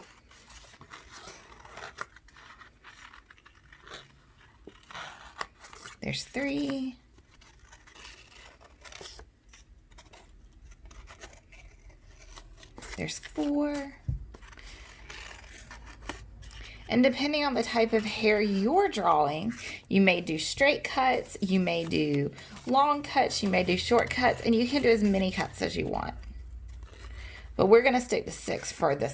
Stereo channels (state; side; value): identical; both; correlation 1.00